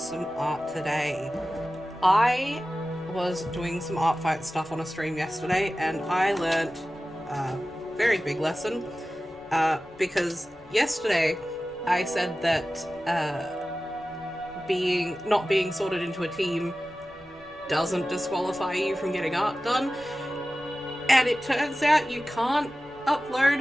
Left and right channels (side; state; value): left; noise; rumble, 27 dB below the sound